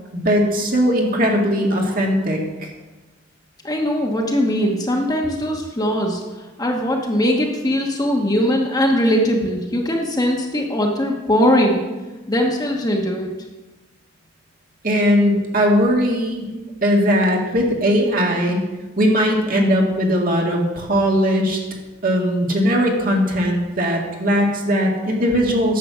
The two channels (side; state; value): both; normal; correlation 0.57